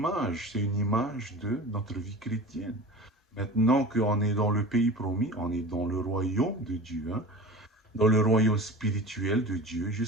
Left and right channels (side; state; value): both; normal; correlation 0.36